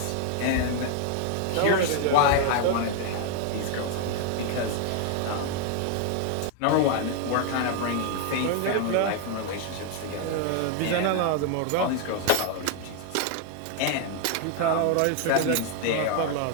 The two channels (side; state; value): both; different; correlation 0.00